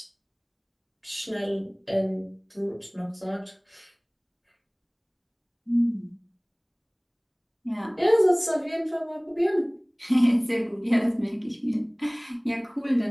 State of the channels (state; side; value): identical; both; correlation 1.00